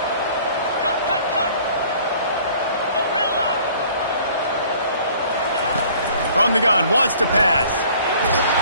From the gun, wants to pass.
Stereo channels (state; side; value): inverted; both; correlation -0.53